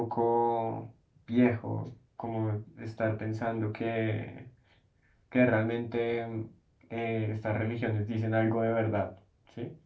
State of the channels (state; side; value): identical; both; correlation 1.00